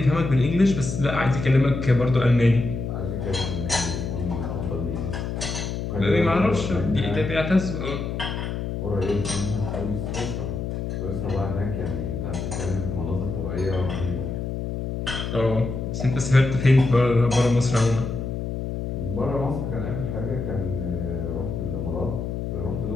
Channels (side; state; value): left; noise; hum, 4 dB below the sound